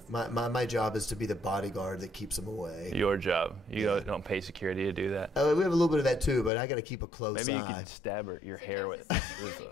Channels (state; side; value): drops out; right; at 6.5 s